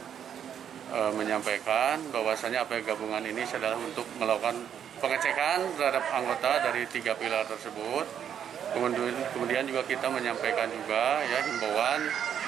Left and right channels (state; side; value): quieter; left; 8.9 dB